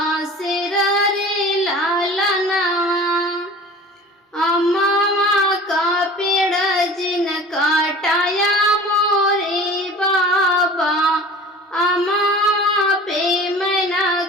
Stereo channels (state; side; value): normal; both; correlation 0.41